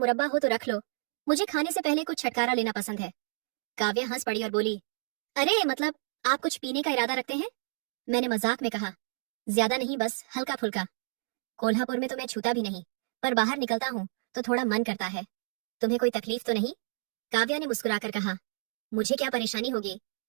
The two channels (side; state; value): left; silent; digital silence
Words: हो तो रख लो, मुझे खाने से पहले कुछ छटकारा लेना पसंद है। काव्या हंस पड़ी और बोली, अरे मतलब आप कुछ पीने का इरादा रखते हैं? मैंने मजाक में कहा, ज्यादा नहीं, बस हल्का फुल्का। कोल्हापुर में तो मैं छूता भी नहीं, पर बाहर निकलता हूँ तो थोड़ा मन करता है। तुम्हें कोई तकलीफ तो नहीं? काव्या ने मुस्कुराकर कहा, मुझे क्या परेशानी होगी,